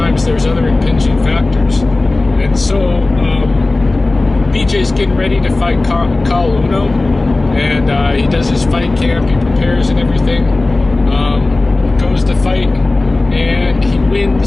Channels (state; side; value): quieter; right; 3.1 dB